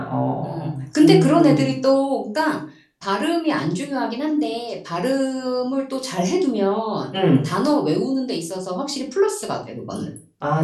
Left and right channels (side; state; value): both; identical; correlation 1.00